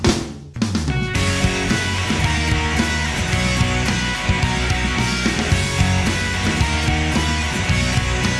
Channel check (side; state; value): both; identical; correlation 1.00